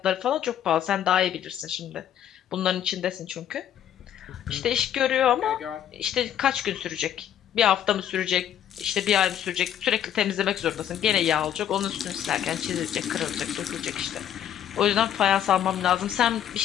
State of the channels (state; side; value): quieter; right; 10.2 dB